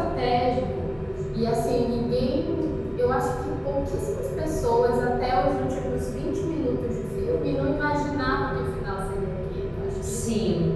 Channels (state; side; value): identical; both; correlation 1.00